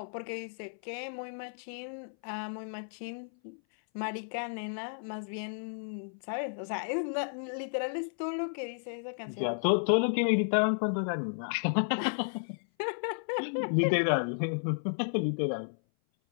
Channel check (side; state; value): right; silent; 56 dB below the other